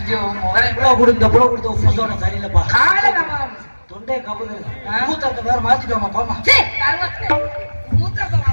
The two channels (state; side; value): inverted; both; correlation -1.00